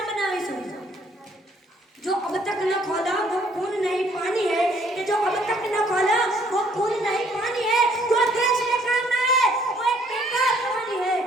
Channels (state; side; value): normal; both; correlation 0.63